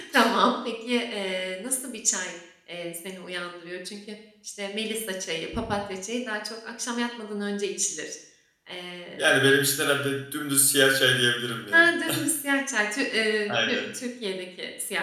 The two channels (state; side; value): identical; both; correlation 1.00